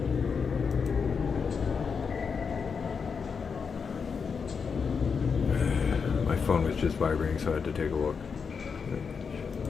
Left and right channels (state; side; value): quieter; right; 5.8 dB